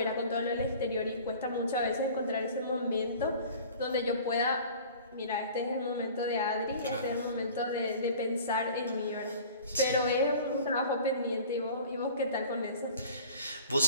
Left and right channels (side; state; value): both; inverted; correlation -0.44